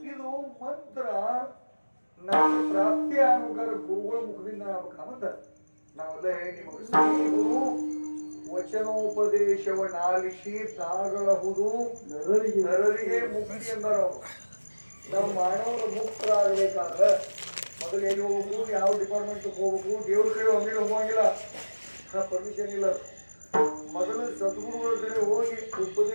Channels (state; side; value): inverted; both; correlation -1.00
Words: ಇದು ಮಂತ್ರ ನಮ್ಮ ಪ್ರಾಪ್ತಿ ಆಗ್ಬೇಕಾದ್ರೆ ಗುರುಗಳ ಮುಖದಿಂದ ಆಗ್ಬೇಕಂತ ನಾವೆಲ್ಲ ನಿಮಗೆ ಶ್ರೀ ಗುರು ವಚನೋಪದೇಶವನ್ನಾಲಿಸಿ ತಾಗಳಹುದು ನರರಿಗೆ ಮುಕ್ತಿ ಎಂದರು. ನಾವು ಮಾನವರು ಮುಕ್ತರಾಗಬೇಕಾದ್ರೆ ಮೊದಲು ಎಲ್ಲಿ ಹೋಗ್ಬೇಕು, ಯಾವ ಡಿಪಾರ್ಟ್ಮೆಂಟ್ ಹೋಗ್ಬೇಕು, ದೇವ್ರ ಕಡೆ ಒಮ್ಮೆ ಹೋಗಂಗಿಲ್ಲ, ಪರ್ಮಿಷನ್ ಇಲ್ಲ. ಮೊದಲು ಸದ್ಗುರುಗಳ ಕಡೆ ಹೋಗಿ